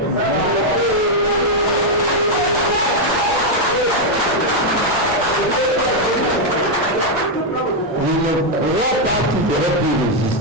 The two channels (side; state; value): both; normal; correlation 0.00